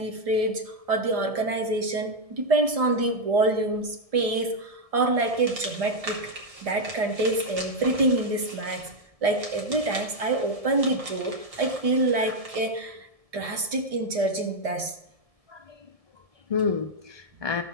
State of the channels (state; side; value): late; left; 1.7 ms